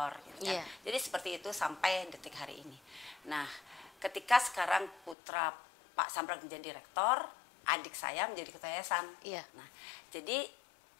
gitu kan. Jadi seperti itu sampai detik hari ini. Nah, ketika sekarang putra Pak Sambrek menjadi rektor, adik saya menjadi ketua yayasan. Nah, jadi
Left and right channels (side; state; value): right; drops out; at 5.2 s